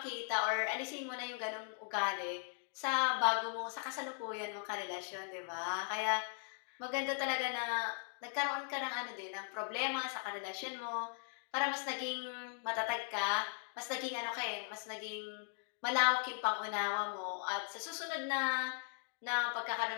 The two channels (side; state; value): right; silent; 52 dB below the other